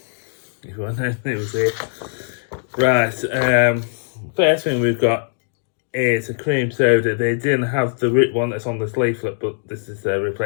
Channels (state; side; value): silent; right; digital silence